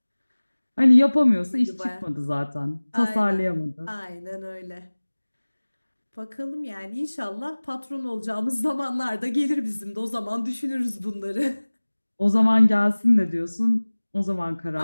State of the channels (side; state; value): both; inverted; correlation -1.00